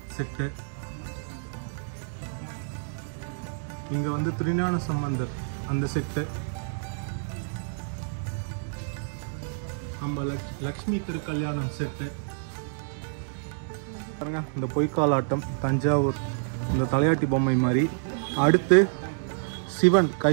செட்டு. இங்கே வந்து திருஞான சம்பந்தர் அந்த செட்டு. நம்ம லக்ஷ்மி திருக்கல்யாணம் செட்டு பாருங்க. இந்த பொய்க்காலாட்டம், தஞ்சாவூர் இந்த தலையாட்டி பொம்மை மாதிரி. அடுத்து சிவன்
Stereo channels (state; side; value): silent; left; digital silence